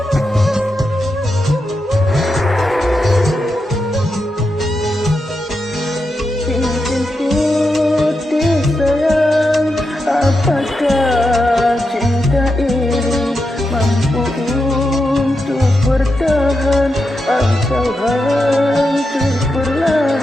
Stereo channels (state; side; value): normal; both; correlation 0.87